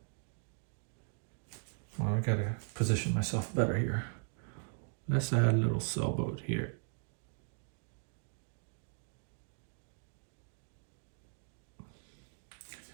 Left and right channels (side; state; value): left; silent; 52 dB below the other